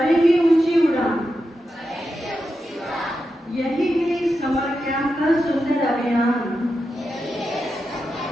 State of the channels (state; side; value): normal; both; correlation 0.88